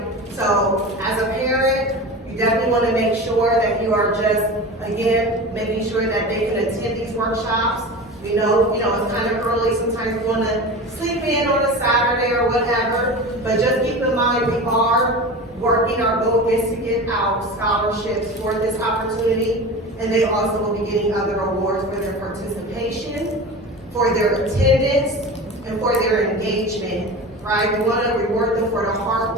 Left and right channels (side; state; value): both; normal; correlation 0.31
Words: So as a parent, you definitely want to make sure that you are just, again, making sure that they can attend these workshops. We know, it's kind of early. Sometimes we want to sleep in on a Saturday or whatever, but just keep in mind we are working. Our goal is to get out scholarships for this opportunity, and they also will be getting other awards for their participation, for their attendance, and for their engagement, right? We want to reward them for the hard